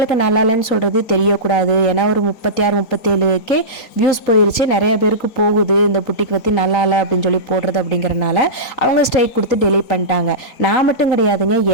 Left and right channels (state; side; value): late; right; 3.9 ms